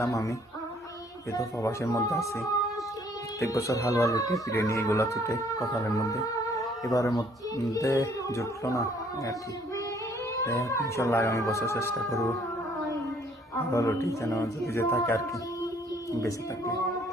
আমি, এই তো প্রবাসের মধ্যে আছি। প্রত্যেক বছর হালুয়া রুটি বিরিয়ানি এগুলো ছুটে কপালের মধ্যে, এবারের মধ্যে জুটলো না আর কি। ইনশাল্লাহ আগামী বছর চেষ্টা করবো হালুয়া রুটি যেন যদি যে থাকে আর কি, বেঁচে থাকলে।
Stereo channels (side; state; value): both; normal; correlation 0.61